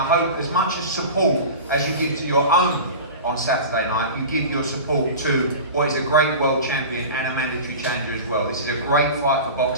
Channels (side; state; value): both; inverted; correlation -0.32